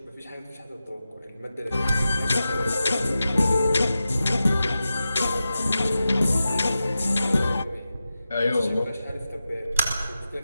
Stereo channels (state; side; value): inverted; both; correlation -0.92